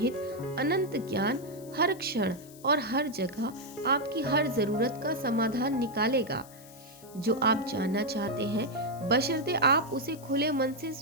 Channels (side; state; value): left; noise; hiss, 21 dB below the sound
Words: अनंत ज्ञान हर क्षण और हर जगह आपकी हर जरूरत का समाधान निकालेगा। जो आप जानना चाहते हैं, बशर्ते आप उसे खुले मन से